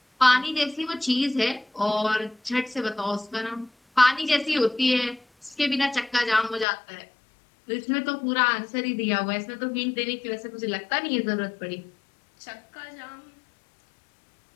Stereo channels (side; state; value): right; drops out; at 6.7 s